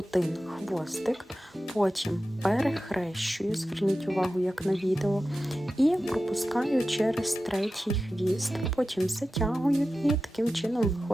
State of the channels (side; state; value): both; normal; correlation 0.94